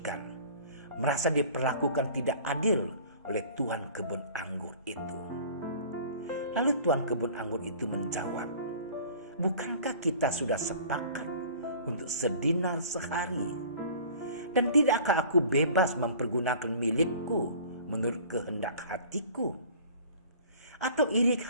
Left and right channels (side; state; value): both; inverted; correlation -0.46